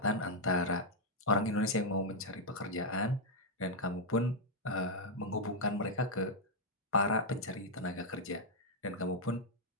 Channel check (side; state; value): both; normal; correlation -0.03